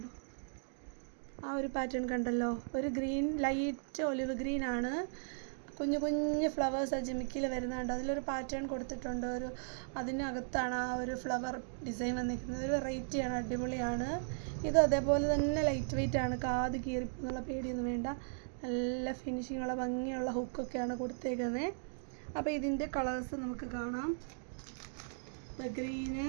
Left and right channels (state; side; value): silent; left; digital silence